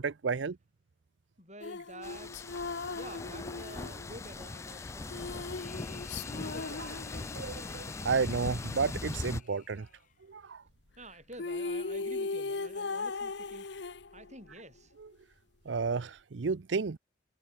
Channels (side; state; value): both; normal; correlation -0.14